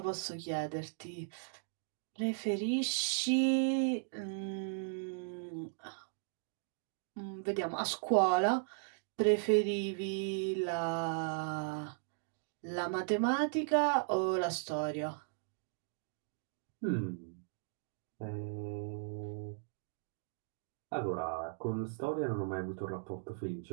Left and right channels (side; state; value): left; silent; digital silence